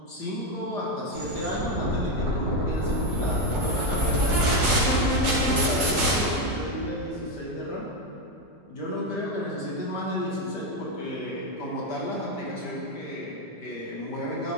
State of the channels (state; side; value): normal; both; correlation 0.09